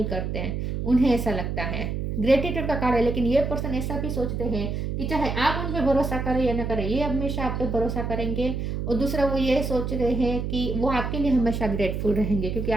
करते हैं, उन्हें ऐसा लगता है। ग्रेटिट्यूड का कार्ड है, लेकिन ये पर्सन ऐसा भी सोचते हैं कि चाहे आप उन पर भरोसा करें या ना करें, ये हमेशा आप पे भरोसा करेंगे। और दूसरा वो ये सोच रहे हैं कि वो आपके लिए हमेशा ग्रेटफुल रहेंगे क्योंकि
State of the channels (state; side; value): noise; right; hum, 2 dB below the sound